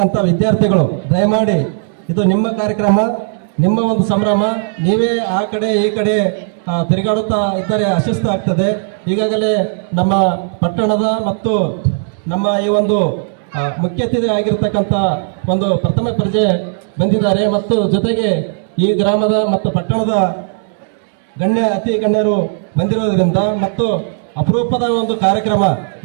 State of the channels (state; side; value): silent; left; 69 dB below the other